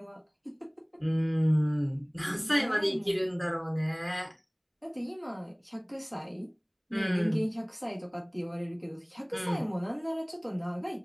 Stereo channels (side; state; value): both; identical; correlation 1.00